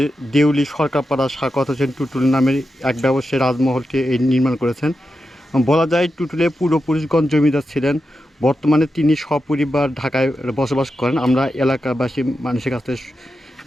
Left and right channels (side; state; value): both; normal; correlation 0.89